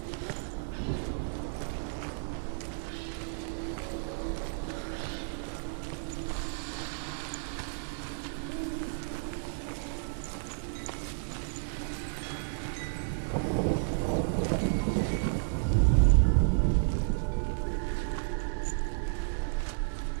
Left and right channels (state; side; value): silent; left; 56 dB below the other